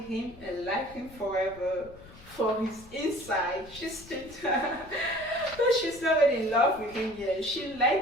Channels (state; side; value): noise; left; rumble, 21 dB below the sound